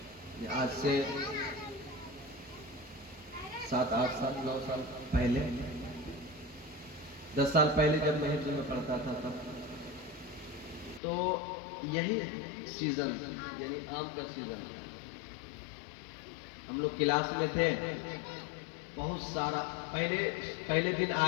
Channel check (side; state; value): right; drops out; at 11.0 s